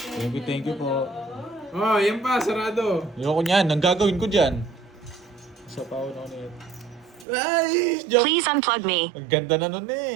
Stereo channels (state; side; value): drops out; left; at 7.2 s